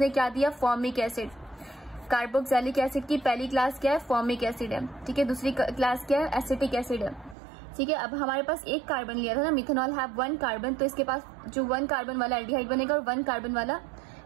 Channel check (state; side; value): drops out; left; at 7.4 s